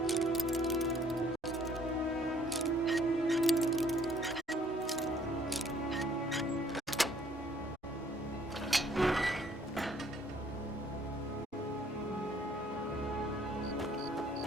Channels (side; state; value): both; normal; correlation 0.61